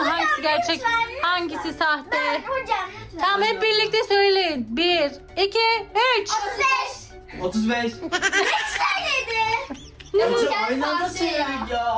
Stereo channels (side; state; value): both; identical; correlation 1.00